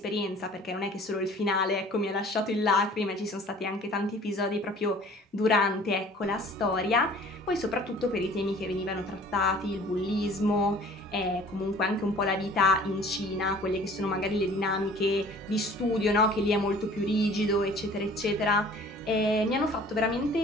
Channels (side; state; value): both; normal; correlation 0.49